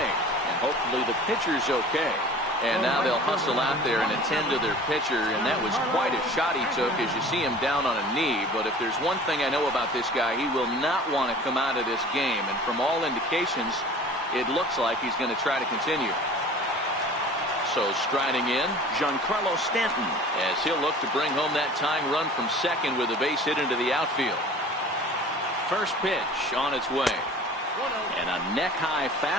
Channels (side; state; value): both; normal; correlation 0.43